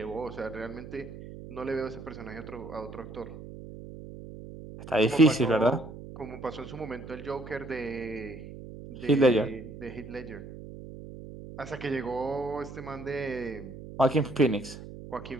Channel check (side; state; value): right; noise; hum, 13 dB below the sound